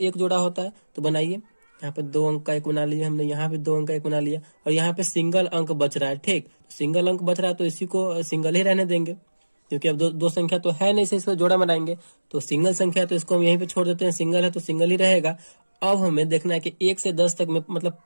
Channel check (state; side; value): inverted; both; correlation -1.00